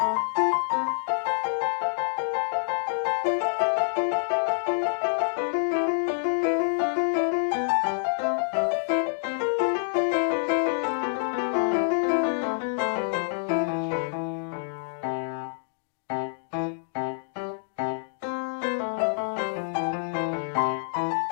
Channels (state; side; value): silent; right; digital silence